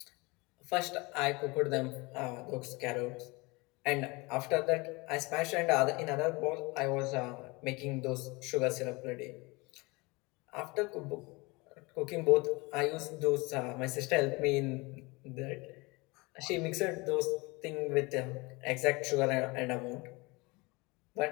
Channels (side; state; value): right; quieter; 25.3 dB